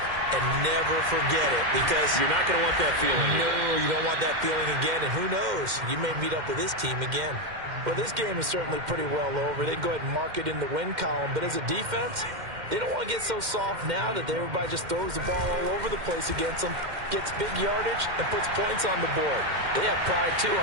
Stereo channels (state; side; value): late; left; 2.1 ms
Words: And never forget it, because you're not going to want that feeling again. No, you don't want that feeling again. And who knows? You may meet up with this team again. Well, this game is certainly pretty well over. They can go ahead and mark it in the win column. But as a defense, they don't want to get so soft now that everybody just throws the ball all over the place against them, gets big yardage, and puts points on the board. They have pride, too,